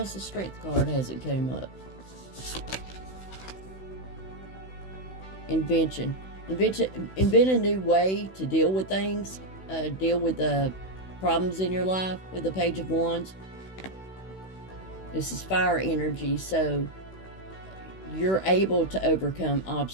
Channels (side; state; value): right; late; 16 ms